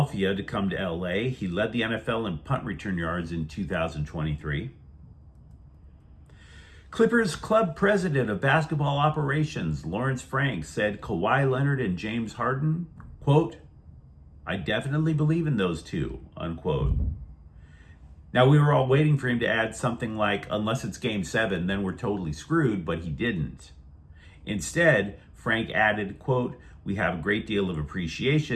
to come to LA. He led the NFL in punt return yards in 2023. Clippers club president of basketball operations, Lawrence Frank, said Kawhi Leonard and James Harden, quote, I definitely believe in those two, unquote. Now, we were all waiting for him to add something like, unless it's game 7, then we're totally screwed, but he didn't. Instead, Frank added, quote, we have a great deal of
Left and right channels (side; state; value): both; identical; correlation 1.00